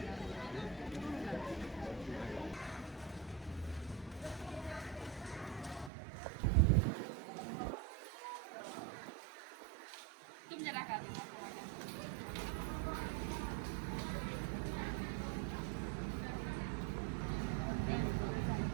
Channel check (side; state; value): left; drops out; at 5.9 s